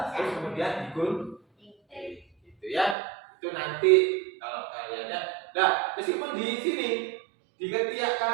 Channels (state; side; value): drops out; left; at 3.0 s